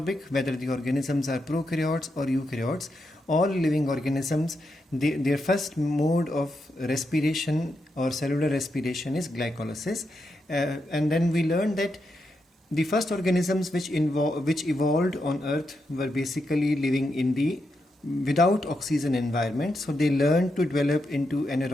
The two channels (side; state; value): both; normal; correlation 0.84